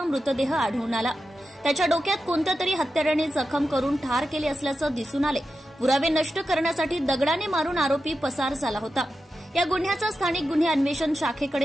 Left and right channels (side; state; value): both; normal; correlation 0.91